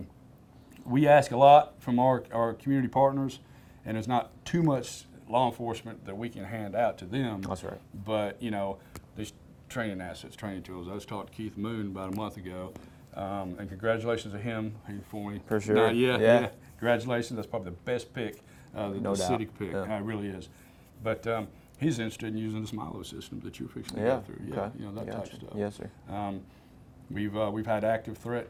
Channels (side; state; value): both; identical; correlation 1.00